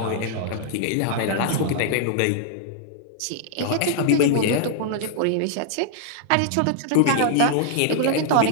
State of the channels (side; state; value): both; different; correlation -0.01